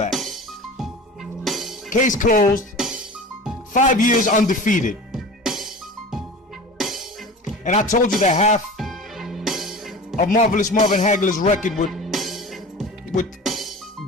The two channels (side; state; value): both; normal; correlation 0.36